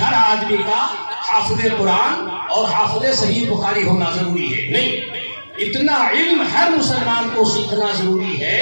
آدمی کا حافظ قرآن اور حافظ صحیح بخاری ہونا ضروری ہے، نہیں، اتنا علم ہر مسلمان کو سیکھنا ضروری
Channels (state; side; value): inverted; both; correlation -1.00